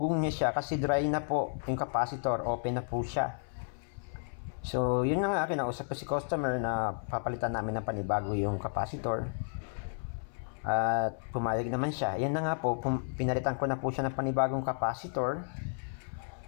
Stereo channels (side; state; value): right; silent; 56 dB below the other